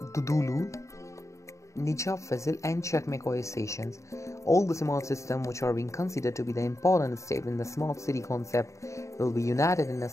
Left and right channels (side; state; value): right; late; 0.15 ms